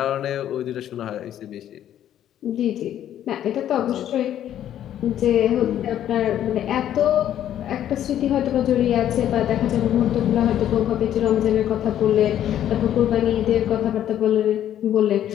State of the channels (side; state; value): right; quieter; 11.0 dB